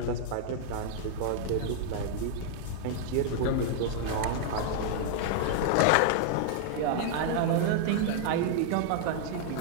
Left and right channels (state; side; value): different; both; correlation -0.01